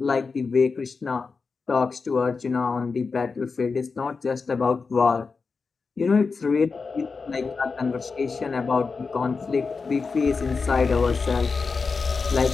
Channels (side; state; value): right; quieter; 4.7 dB